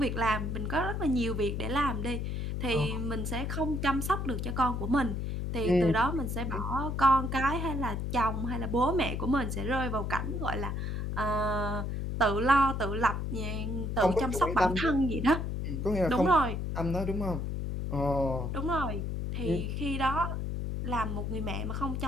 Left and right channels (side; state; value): left; noise; hum, 2 dB below the sound